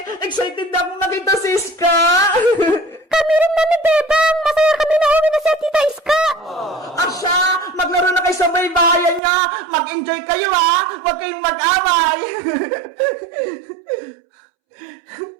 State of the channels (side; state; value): left; drops out; at 9.2 s